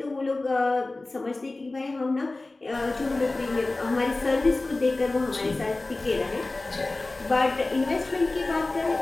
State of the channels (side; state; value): right; quieter; 3.1 dB